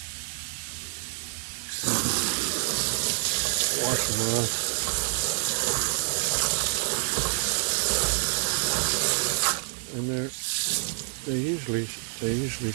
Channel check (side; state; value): left; silent; 60 dB below the other